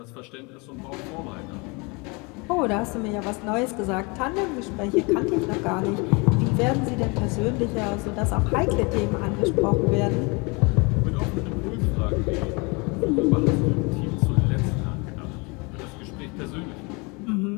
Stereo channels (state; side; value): quieter; right; 29.2 dB